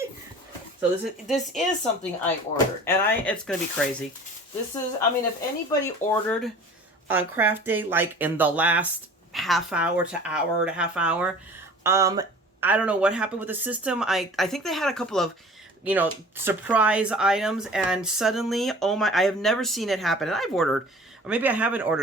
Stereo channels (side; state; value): both; normal; correlation 0.44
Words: So this is something I ordered. And it's going to be crazy. This is... I mean, if anybody ordered on craft day, like in the last half hour to hour to half hour, I don't know what happened with the system. I think they had a couple of, you know, surprise items. And suddenly, oh my... I have never seen it happen. And I've ordered... Or maybe I haven't